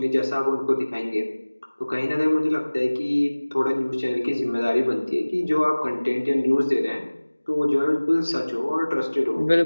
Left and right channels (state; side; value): inverted; both; correlation -1.00